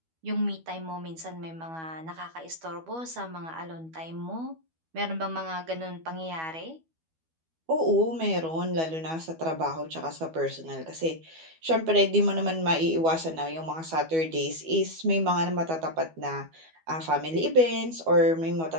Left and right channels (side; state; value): left; late; 12 ms